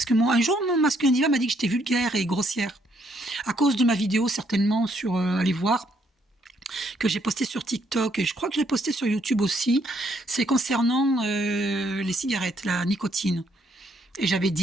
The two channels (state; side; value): normal; both; correlation 0.70